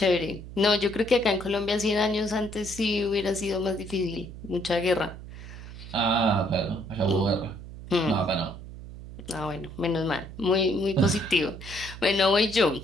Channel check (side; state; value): right; noise; hum, 13 dB below the sound